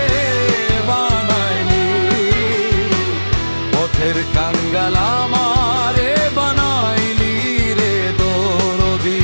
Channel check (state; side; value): inverted; both; correlation -1.00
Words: বানাইলি, পথের কাঙ্গাল আমারে বানাইলি রে দরদি।